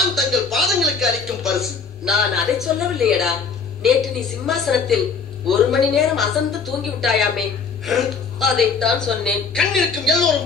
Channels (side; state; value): right; quieter; 5.4 dB